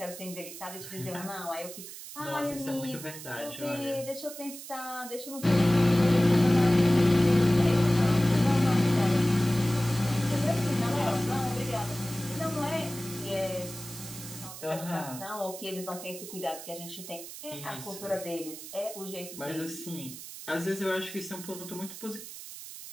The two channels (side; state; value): right; noise; hiss, 12 dB below the sound